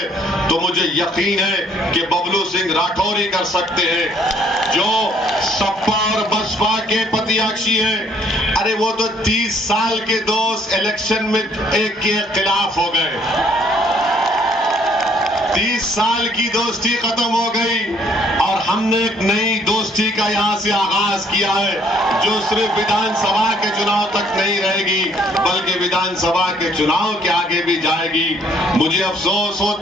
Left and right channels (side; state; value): both; normal; correlation 0.63